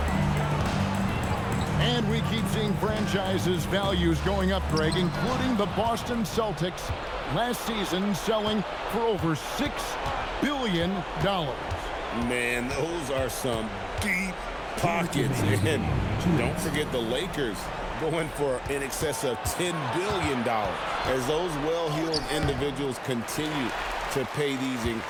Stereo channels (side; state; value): both; identical; correlation 1.00